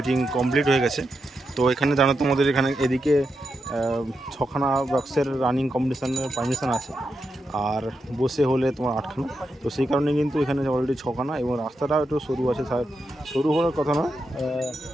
কমপ্লিট হয়ে গেছে। তো এখানে জানো তোমাদের এখানে এদিকে 6খানা বক্সের রানিং কম্পিটিশানের পারমিশন আছে, আর বসে হলে তোমার 8খানা। তো সেই কারণে কিন্তু এখানে অলরেডি 6খানা, এবং রাস্তাটাও একটু সরু আছে। সরু হওয়ার কথা না,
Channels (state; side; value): normal; both; correlation 0.86